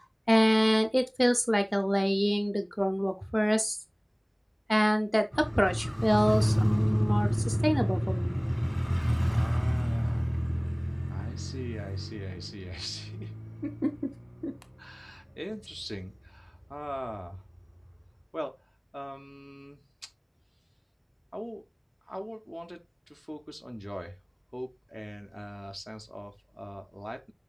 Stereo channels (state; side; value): identical; both; correlation 1.00